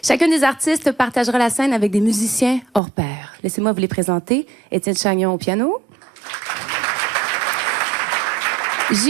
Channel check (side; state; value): left; drops out; at 2.8 s